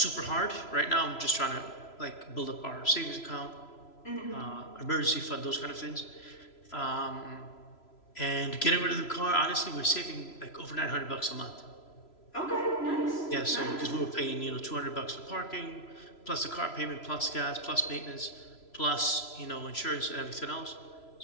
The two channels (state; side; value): late; right; 3.0 ms